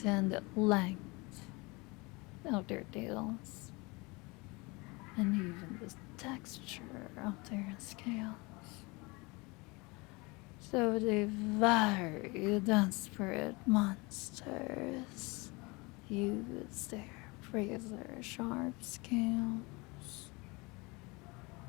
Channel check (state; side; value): quieter; right; 26.0 dB